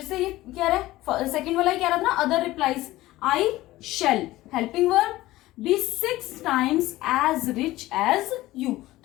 से ये क्या रहा है, सेकेंड वाला ही क्या रहा था ना, other replies. I shall helping verb be 6 times as rich as you,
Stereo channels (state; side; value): quieter; right; 17.2 dB